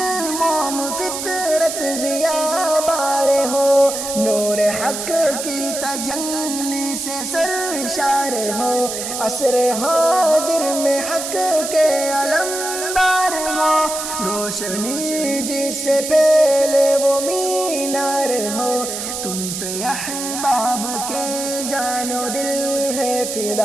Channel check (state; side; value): noise; right; hiss, 5 dB below the sound